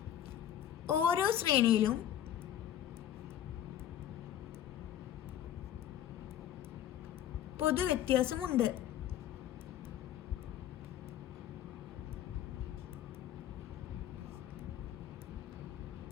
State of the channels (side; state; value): right; quieter; 11.0 dB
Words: ഓരോ ശ്രേണിയിലും പൊതുവ്യത്യാസമുണ്ട്.